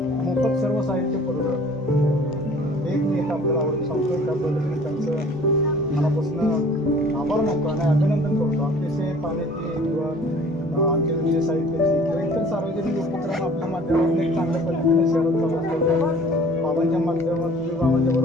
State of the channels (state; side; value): normal; both; correlation 0.50